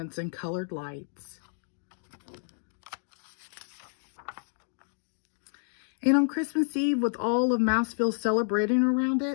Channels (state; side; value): silent; right; digital silence